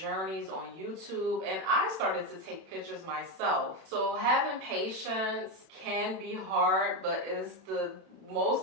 on YouTube, and I started to take pictures myself. So having patience can be hard, but it's the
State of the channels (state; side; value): late; left; 31 ms